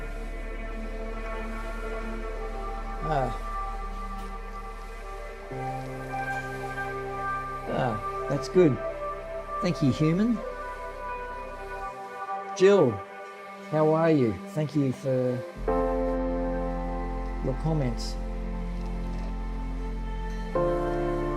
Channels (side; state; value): both; identical; correlation 1.00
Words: that's good. Thank you, human. Jill, how are you? Thank you for your comments.